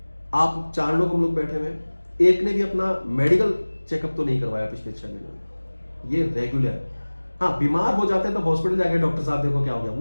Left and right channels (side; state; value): both; inverted; correlation -1.00